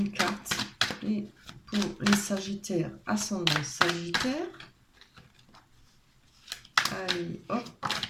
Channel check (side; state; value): both; identical; correlation 1.00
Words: carte. Et pour les Sagittaires, ascendant Sagittaire. Allez, hop,